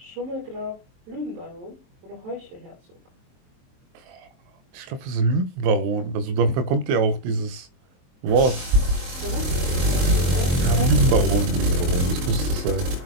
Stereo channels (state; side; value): late; left; 23 ms